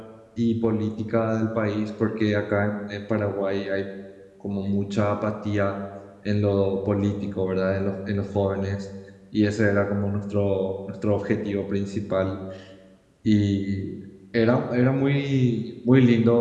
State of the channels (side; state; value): both; identical; correlation 1.00